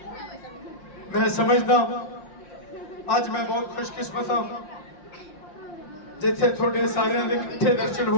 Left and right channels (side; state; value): right; late; 5.6 ms